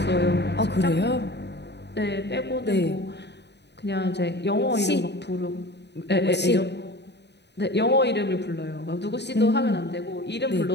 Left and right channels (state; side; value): late; right; 0.50 ms